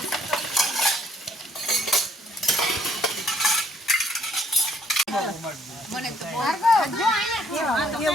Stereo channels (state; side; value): normal; both; correlation 0.64